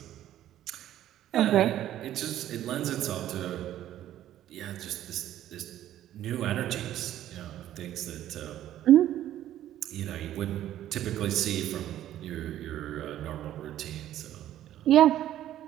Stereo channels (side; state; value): left; quieter; 12.4 dB